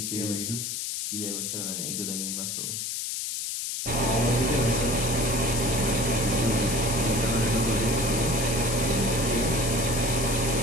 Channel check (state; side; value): noise; left; hiss, 3 dB below the sound